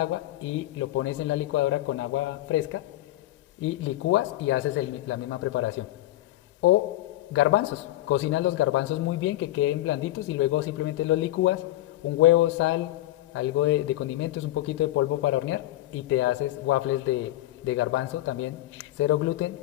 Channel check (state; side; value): quieter; right; 15.6 dB